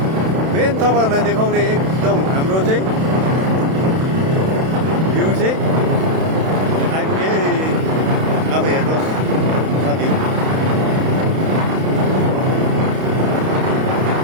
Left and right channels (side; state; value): left; late; 31 ms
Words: मेन तपाईँहरूलाई देखाउने एकदम हाम्रो चाहिँ भ्यू चाहिँ आइपुगे अब हेर्नुहोस् साथीहरू